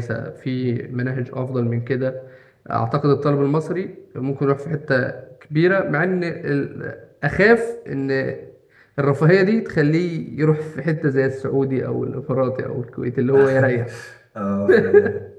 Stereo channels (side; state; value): both; identical; correlation 1.00